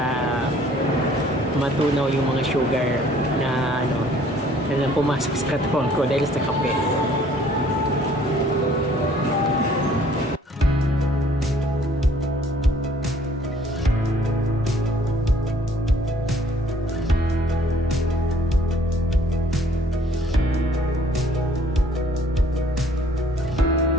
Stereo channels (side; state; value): both; normal; correlation 0.58